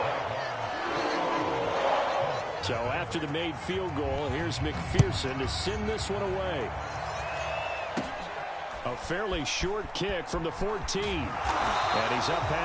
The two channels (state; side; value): identical; both; correlation 1.00